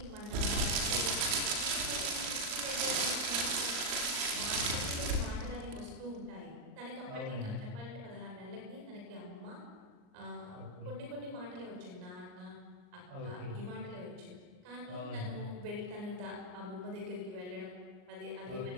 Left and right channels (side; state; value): left; late; 39 ms